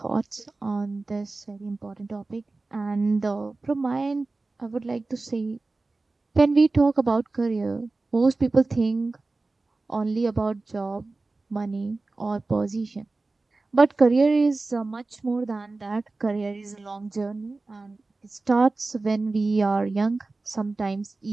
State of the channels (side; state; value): left; quieter; 3.4 dB